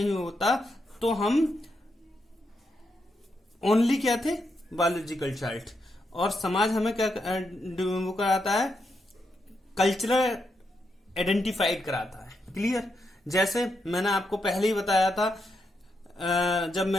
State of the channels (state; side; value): normal; both; correlation 0.82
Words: होता तो हम ओनली क्या थे, बायोलॉजिकल चाइल्ड। और समाज हमें क्या वो कराता है, कल्चरल आइडेंटिफाइड कराता है। क्लियर। जैसे मैंने आपको पहले ही बताया था, जब